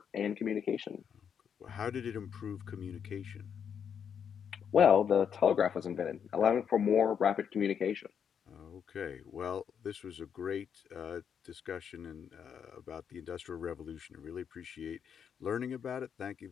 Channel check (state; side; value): quieter; right; 7.7 dB